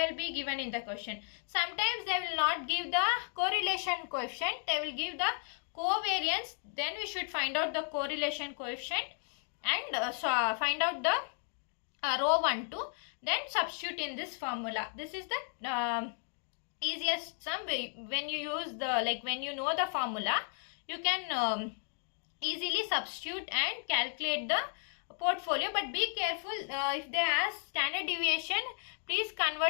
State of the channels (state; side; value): silent; right; 55 dB below the other